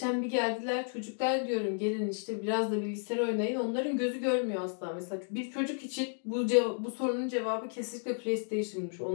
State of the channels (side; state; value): right; silent; 56 dB below the other